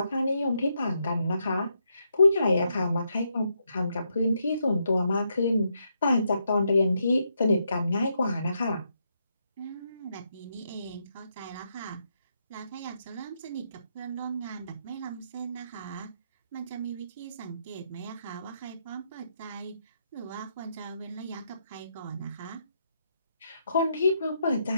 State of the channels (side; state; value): both; inverted; correlation -0.79